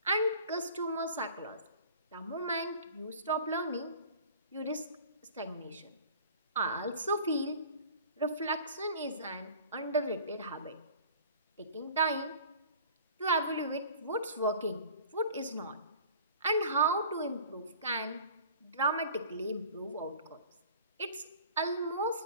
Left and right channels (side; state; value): both; inverted; correlation -0.44